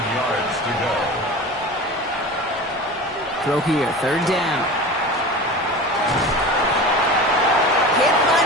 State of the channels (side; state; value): both; normal; correlation 0.33